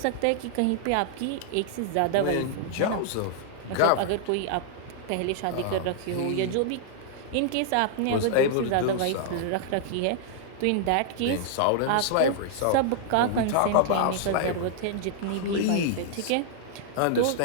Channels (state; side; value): different; both; correlation -0.01